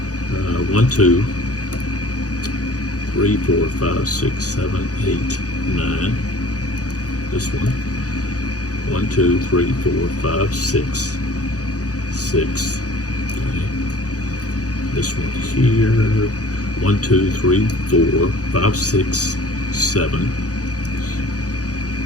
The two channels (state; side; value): late; right; 0.67 ms